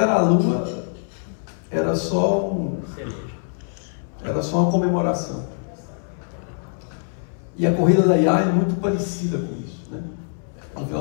à Lua era só uma comemoração. E a corrida da IA é muito parecida com isso, né? No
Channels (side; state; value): right; silent; 61 dB below the other